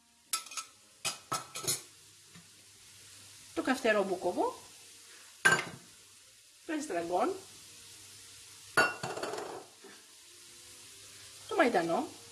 το καυτερό μπούκοβο, το εστραγκόν, το μαϊντανό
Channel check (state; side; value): identical; both; correlation 1.00